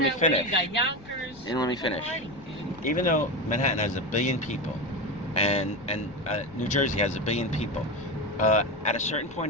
me finish. You got Yonkers. You didn't let me finish. Even though Manhattan has 1 billion people, and New Jersey has 1 billion people, at a certain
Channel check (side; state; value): left; noise; rumble, 21 dB below the sound